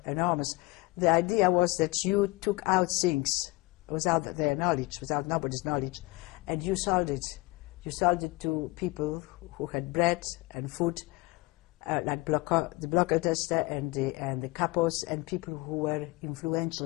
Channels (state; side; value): quieter; right; 21.9 dB